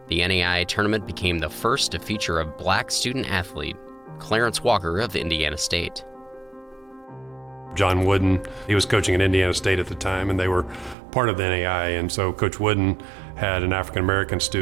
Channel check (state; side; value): drops out; left; at 11.0 s